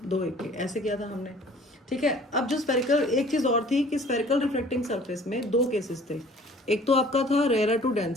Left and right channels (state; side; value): normal; both; correlation 0.51